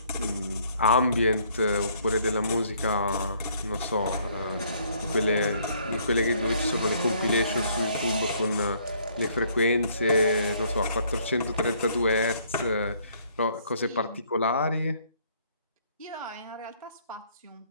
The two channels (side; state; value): both; inverted; correlation -0.64